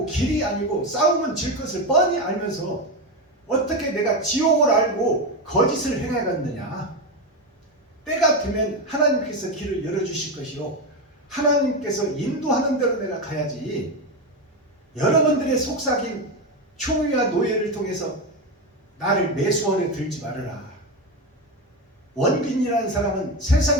길이 아니고 싸우면 질 것을 뻔히 알면서 어떻게 내가 지옥을 알고 거짓을 행해갔느냐. 때가 되면 하나님께서 길을 열어주실 것이요, 하나님께서 인도하는 대로 내가 가야지. 여러분들의 속삭임, 총위와 노예를 통해서 나를 매수원에 들지 말아라. 원빈이라는 사람은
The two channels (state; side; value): normal; both; correlation 0.15